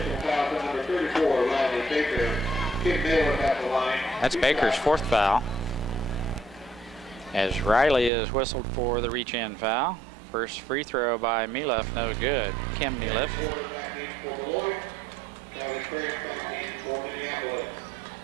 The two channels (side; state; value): left; drops out; at 8.1 s